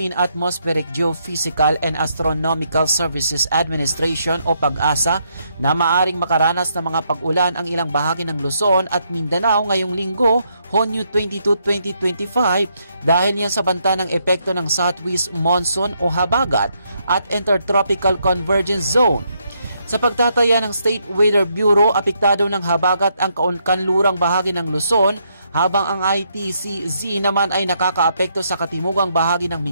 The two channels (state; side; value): inverted; both; correlation -0.76